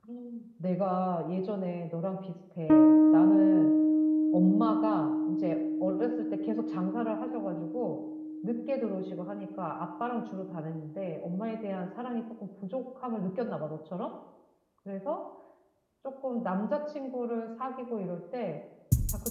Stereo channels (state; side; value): identical; both; correlation 1.00